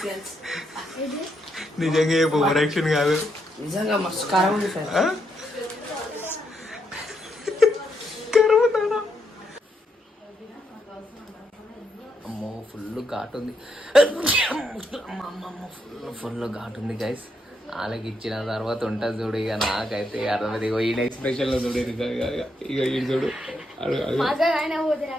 నిజంగా ఏ ఓవర్ యాక్షన్ కాదు, నిజంగా మస్తు కారం ఉంది సార్. అమ్మో ఫుల్ ఘాట్ ఉంది, ఫుల్ ఘాట్ ఉంది గైస్. వాళ్ళకి ఇచ్చిన తర్వాత ఉంటుంది చూడు. ఇక నాకైతే అర్థమైంది. ఇగో ఈయన ఎక్స్ప్రెషన్ లో చూడు, ఇక ఈయన చూడు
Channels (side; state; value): both; normal; correlation 0.79